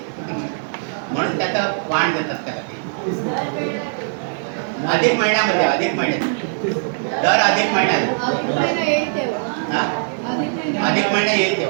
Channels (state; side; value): silent; left; digital silence